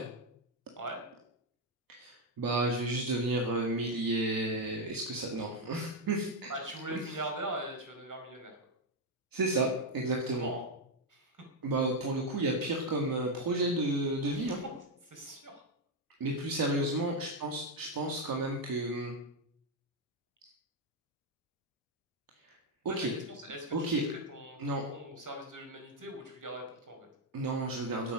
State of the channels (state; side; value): normal; both; correlation 0.04